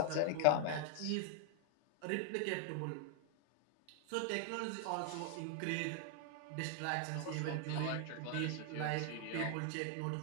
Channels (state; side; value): different; both; correlation 0.00